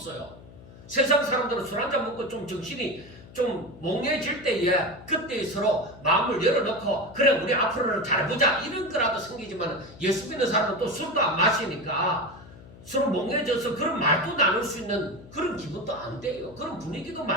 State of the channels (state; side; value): noise; left; hum, 19 dB below the sound